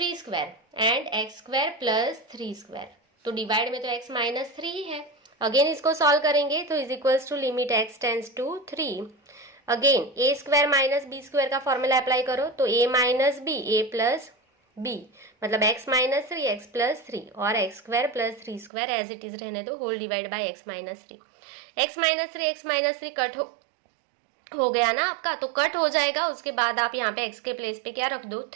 square and x square plus 3 square. तो डिवाइड में तो x -3 ही है। अगेन इसको सॉल्व करेंगे तो is equals to limit x tends to 3। Again a square minus B square का फॉर्मूला अप्लाई करो तो a minus B a plus b मतलब x -3 x प्लस 3 और x square plus 3 square as it is रहने दो, whole divide by x -3। x -3 cut हो गया ना आपका, तो कट हो जाएगा। उसके बाद आप यहाँ पे x के प्लेस पे क्या रख दो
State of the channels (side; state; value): left; drops out; at 18.7 s